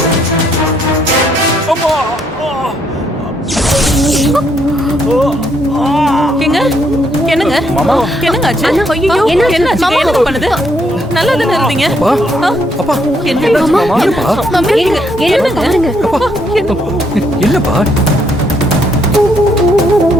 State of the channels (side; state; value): both; normal; correlation 0.72